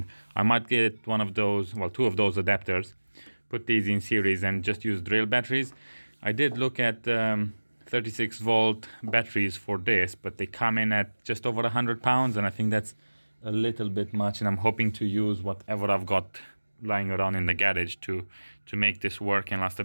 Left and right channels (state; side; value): inverted; both; correlation -1.00